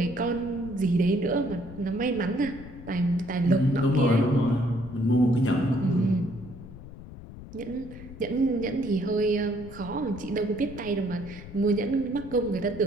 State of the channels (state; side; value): noise; left; rumble, 15 dB below the sound